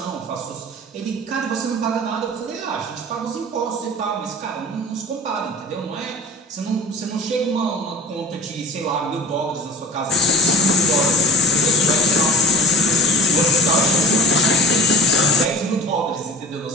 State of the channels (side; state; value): both; normal; correlation 0.41